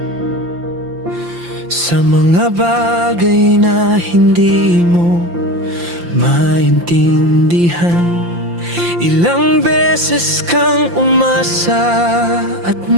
sa mga bagay na hindi mo maintindihan. Ilang beses kang umasa at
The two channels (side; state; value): left; late; 5.8 ms